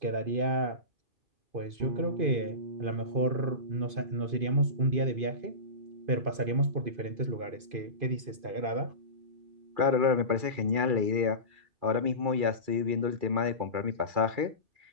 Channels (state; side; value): late; left; 2.5 ms